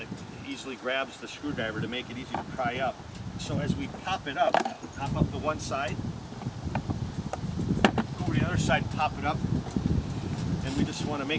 easily grabs the screwdriver to make it easy to pry up. So as we pop it up, pop up the one side, go over to the other side, pop it up, and we just want to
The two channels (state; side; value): identical; both; correlation 1.00